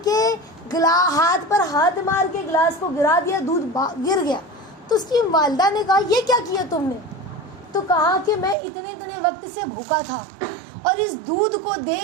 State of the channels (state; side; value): drops out; left; at 8.6 s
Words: کے ہاتھ پر ہاتھ مار کے گلاس کو گرا دیا, دودھ گر گیا. تو اس کی والدہ نے کہا یہ کیا کیا تم نے؟ تو کہا کہ میں اتنے وقت سے بھوکا تھا, اور اس دودھ کو